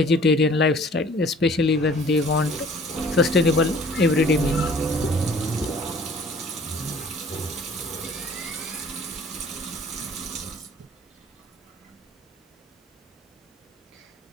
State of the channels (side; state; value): both; normal; correlation 0.52